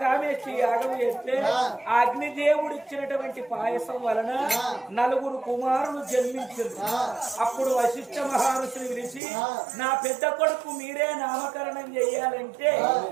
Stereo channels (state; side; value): drops out; left; at 9.2 s